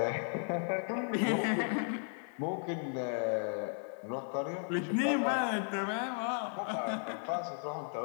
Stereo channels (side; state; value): right; silent; 54 dB below the other